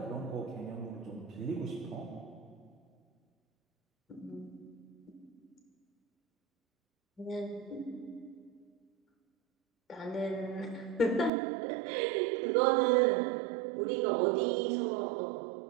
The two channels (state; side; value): drops out; left; at 11.3 s